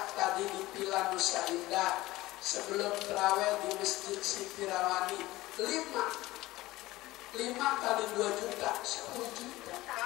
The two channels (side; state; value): right; quieter; 18.0 dB